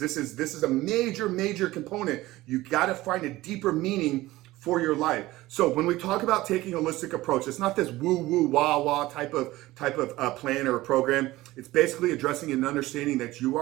is a major component. You got to find a deeper meaning for your life. So when we talk about taking a holistic approach, it's not this woo wah type of plan or a program. It's basically addressing and understanding that you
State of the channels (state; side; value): quieter; left; 17.8 dB